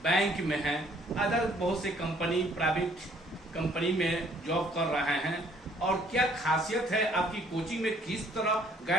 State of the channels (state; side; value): normal; both; correlation 0.61